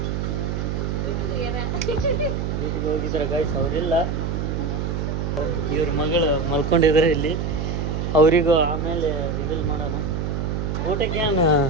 ಡ್ಯೂಟಿಗೆ ಹೋಗಿದ್ದಾರೆ ಗೈಸ್, ಅವರಿಲ್ಲ. ಇವ್ರ ಮಗಳು ಮಲ್ಕೊಂಡಿದ್ದಾರೆ ಇಲ್ಲಿ. ಅವರಿಗೂ ಆಮೇಲೆ ರಿವೀಲ್ ಮಾಡೋಣ. ಊಟಕ್ಕೆ ಏನು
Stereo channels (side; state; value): right; noise; hum, 1 dB below the sound